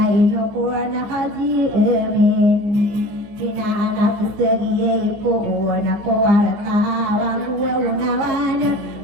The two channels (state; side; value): late; left; 14 ms